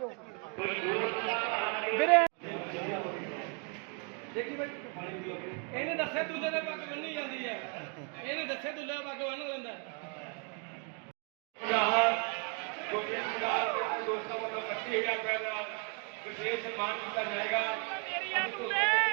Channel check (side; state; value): left; quieter; 36.3 dB